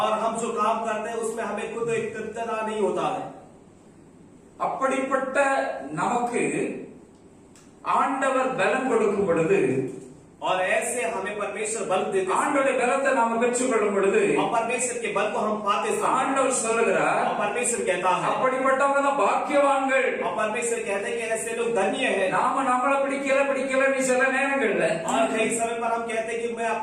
हम जो काम करते हैं उसमें हमें खुद एक तृप्तता नहीं होता है। அப்படிப்பட்ட நமக்கு ஆண்டவர் பலன் கொடுக்கும் பொழுது और ऐसे हमें परमेश्वर बल देते हैं ஆண்டவருடைய பலத்தை நாம பெற்றுக்கொள்ளும் பொழுது और परमेश्वर के बल को हम पाते हैं ஆண்டவர் சொல்லுகிறார் और परमेश्वर कहता है அப்படிப்பட்டவங்க தான் பாக்கியவான்கள் और परमेश्वर कहते हैं कि ऐसे लोग धन्य हैं। நாம நம்மள பிடிக்கல நீ சில நேரங்கள்ல और कई समय पर हम कहते हैं कि मैं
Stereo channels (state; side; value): identical; both; correlation 1.00